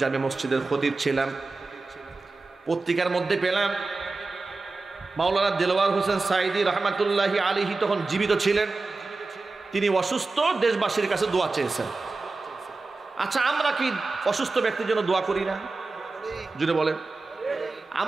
জামে মসজিদের খতিব ছিলাম। পত্রিকার মধ্যে পেলাম মাওলানা দিলওয়ার হোসেন সাঈদী রহমাতুল্লাহি আলাইহি তখন জীবিত ছিলেন, তিনি অসুস্থ, দেশবাসীর কাছে দোয়া চেয়েছেন। আচ্ছা, আমরা কি অসুস্থ ব্যক্তির জন্য দোয়া করি না? জুড়ে বলেন।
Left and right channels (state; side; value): quieter; left; 3.7 dB